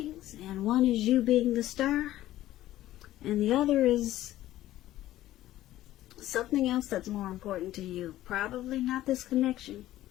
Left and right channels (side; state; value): right; quieter; 14.5 dB